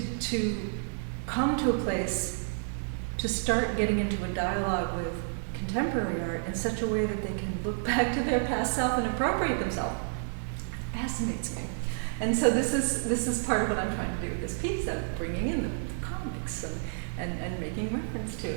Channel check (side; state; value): left; silent; digital silence